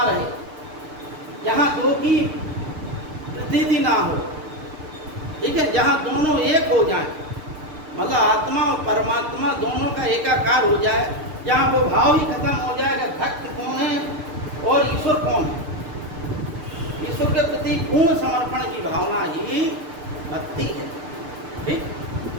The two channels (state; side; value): late; left; 6.7 ms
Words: रहे, जहाँ दो की प्रतीति ना हो। ठीक है, जहाँ दोनों एक हो जाए, मतलब आत्मा और परमात्मा दोनों का एकाकार हो जाए, जहाँ वो भाव ही खत्म हो जाएगा भक्त कौन है और ईश्वर कौन है। ईश्वर के प्रति पूर्ण समर्पण की भावना ही भक्ति है। ठीक,